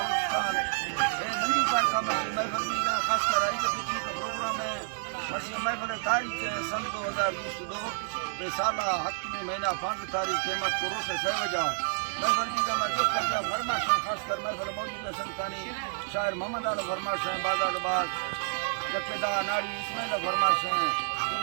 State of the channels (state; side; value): silent; left; digital silence